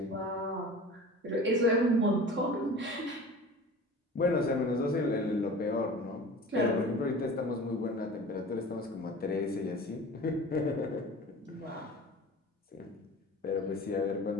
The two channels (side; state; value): both; normal; correlation 0.38